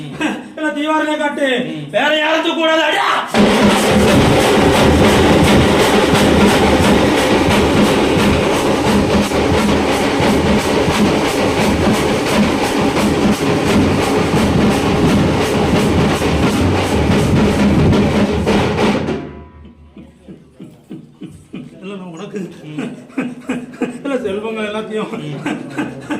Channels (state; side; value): identical; both; correlation 1.00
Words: இல்ல தீவாரங்க காட்டு வேற யாரும் கூடாது. அடியா உனக்கு செல்வங்க எல்லாத்தையும்